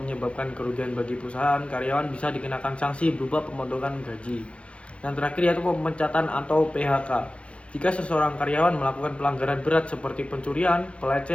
kerugian bagi perusahaan, karyawan bisa dikenakan sanksi berupa pemotongan gaji. Yang terakhir yaitu pemecatan atau PHK. Jika seseorang karyawan melakukan pelanggaran berat seperti pencurian,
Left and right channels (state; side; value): late; right; 0.060 ms